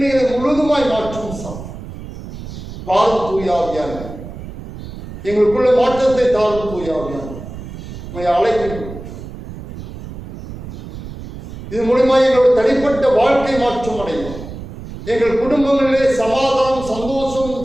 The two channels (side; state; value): right; noise; rumble, 12 dB below the sound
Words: முழுதுமாய் மாற்றும் வாரும் தூயாவியான எங்களுக்குள்ள மாற்றத்தை தாரும் தூயாவியான அழைக்கின்றோம். இது மூலமாக எங்களுடைய தனிப்பட்ட வாழ்க்கை மாற்றம் அடையும். எங்கள் குடும்பங்களிலே சமாதானம், சந்தோஷம்,